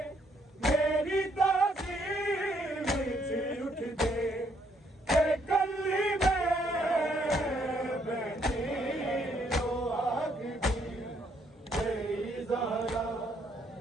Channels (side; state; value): both; normal; correlation 0.70